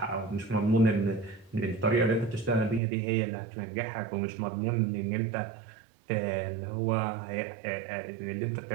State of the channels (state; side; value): drops out; left; at 2.8 s